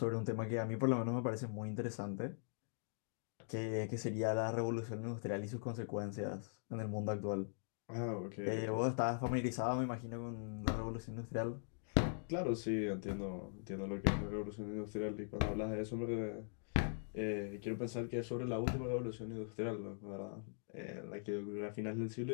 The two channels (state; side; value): silent; right; digital silence